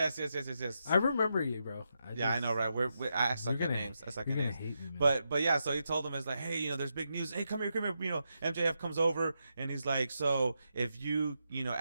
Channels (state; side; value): inverted; both; correlation -0.85